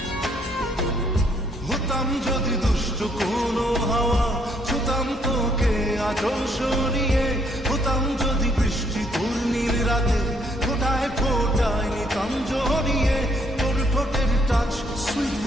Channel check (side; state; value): both; normal; correlation 0.69